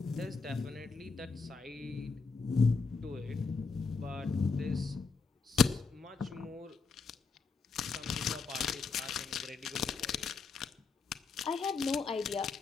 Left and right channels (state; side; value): quieter; right; 4.7 dB